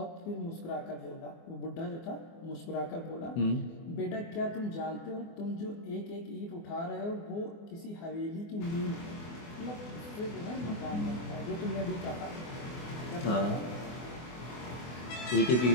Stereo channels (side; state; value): right; late; 24 ms